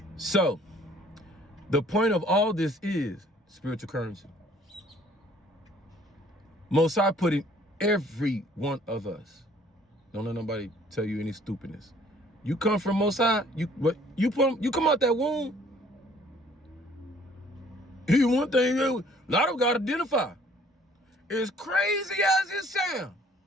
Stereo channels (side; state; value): both; normal; correlation 0.57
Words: So the point of all this is spiritual currency. Most High put in every one of us. Don't let nobody tell you any stupidness. You come from Most High, you come out that womb. Here's one thing a lot of got to identify. As crazy as it sounds,